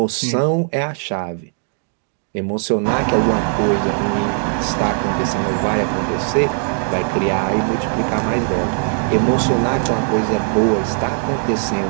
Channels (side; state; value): left; silent; 57 dB below the other